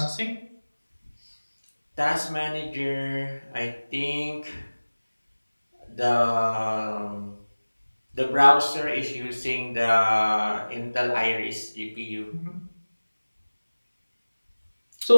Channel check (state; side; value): inverted; both; correlation -1.00